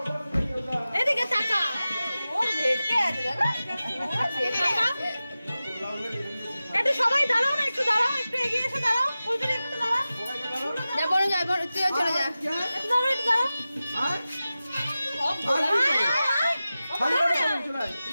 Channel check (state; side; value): inverted; both; correlation -0.95